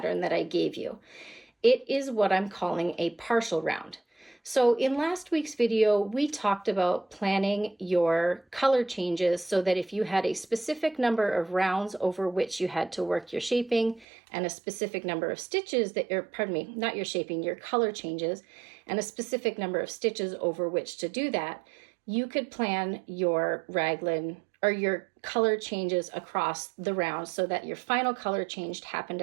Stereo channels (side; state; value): left; drops out; at 14.1 s